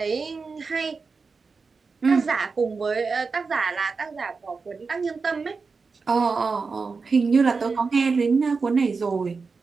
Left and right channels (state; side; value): quieter; left; 4.6 dB